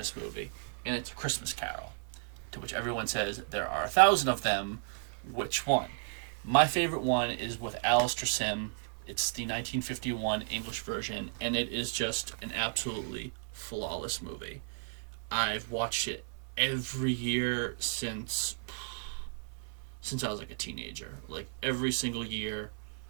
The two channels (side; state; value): left; silent; 55 dB below the other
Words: movie, and it's A Christmas Carol, to which everyone says there are 1,000 of them. Which one? My favorite one is with Alistair Sim. It's the 1951 English version, and it is just an absolutely flawless movie. I've watched it every year since I was like a teenager. Like every single year